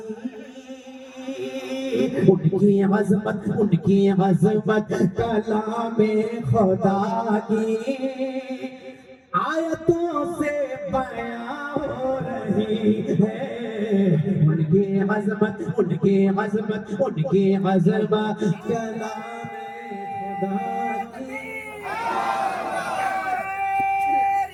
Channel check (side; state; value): both; identical; correlation 1.00